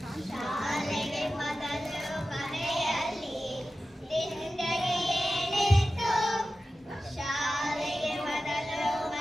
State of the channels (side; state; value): both; normal; correlation 0.94